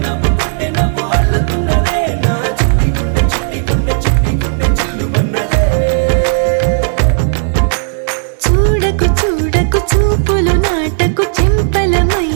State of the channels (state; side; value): silent; left; digital silence